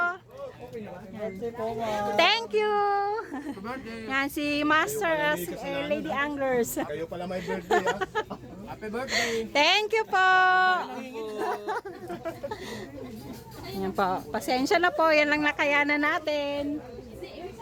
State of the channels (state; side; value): identical; both; correlation 1.00